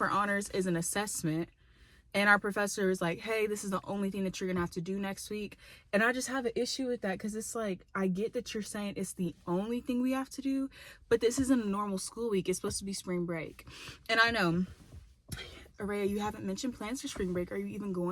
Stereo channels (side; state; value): both; identical; correlation 1.00